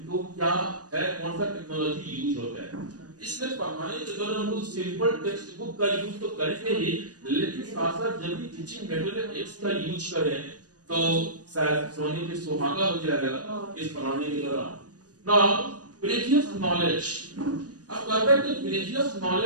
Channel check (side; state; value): left; late; 0.68 ms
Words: तो क्या है, कौन सा टेक्नोलॉजी यूज होता है। इसलिए पढ़ाने के दौरान हम लोग सिंपल टेक्स्ट बुक का यूज तो करेंगे ही, लेकिन साथ साथ जब भी टीचिंग मटेरियल एड्स का यूज करें तो शायद सोने पे सुहागा हो जाएगा इस पढ़ाने के दौरान। नाउ प्रीवियस नॉलेज, अब कहते हैं कि प्रीवियस